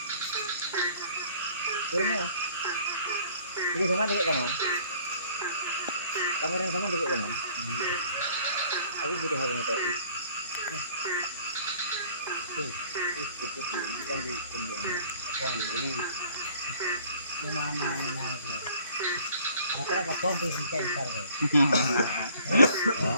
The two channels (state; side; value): inverted; both; correlation -0.54